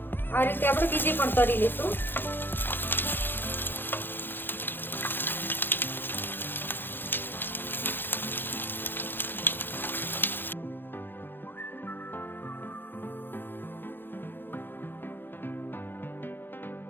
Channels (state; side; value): late; right; 0.099 ms